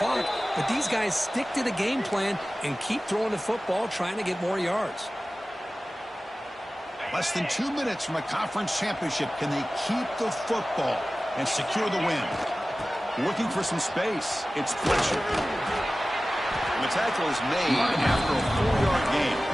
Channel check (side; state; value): both; normal; correlation 0.96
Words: but these guys stick to the game plan and keep throwing the football, trying to get more yards. Less than 2 minutes from a conference championship. Can they keep the football and secure the win? Looking for some space. It's Fletcher. And the tackle is made after a 4-yard gain,